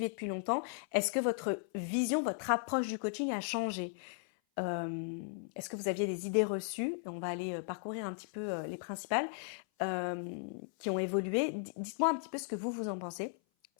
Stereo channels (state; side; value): silent; right; 54 dB below the other